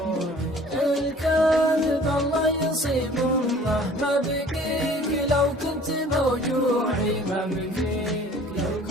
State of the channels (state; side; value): normal; both; correlation 0.50